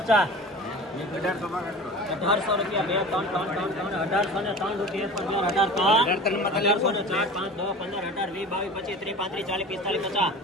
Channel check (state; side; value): normal; both; correlation 0.37